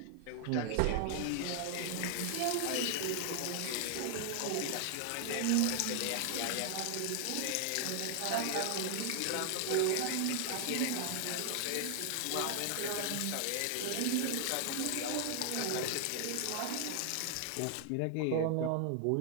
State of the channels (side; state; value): both; different; correlation 0.00